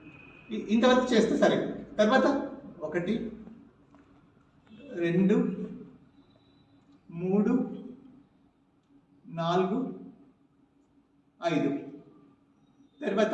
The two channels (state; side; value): identical; both; correlation 1.00